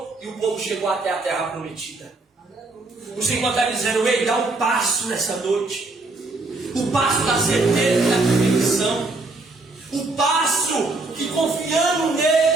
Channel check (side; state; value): left; quieter; 3.2 dB